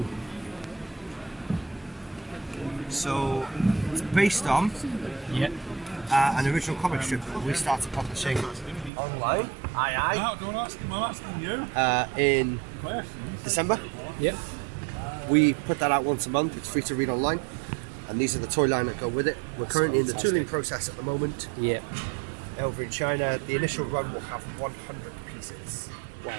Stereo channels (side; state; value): left; drops out; at 8.9 s